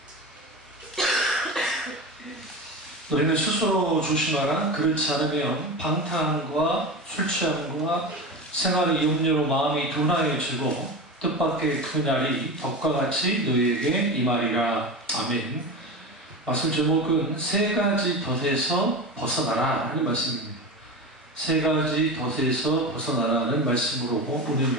너희는 스스로 조심하라. 그렇지 않으면 방탕함과 술 취함과 생활의 염려로 마음이 둔하여지고 뜻밖의 그 날이 덕과 같이 너희에게 임하리라. 아멘. 말씀 제목은 세 가지 덫에서 벗어나라 하는 말씀입니다. 세 가지 덫에서 벗어나라는 말씀으로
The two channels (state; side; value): normal; both; correlation 0.26